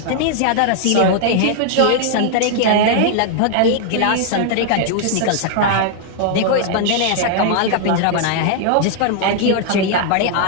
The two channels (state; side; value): different; both; correlation 0.00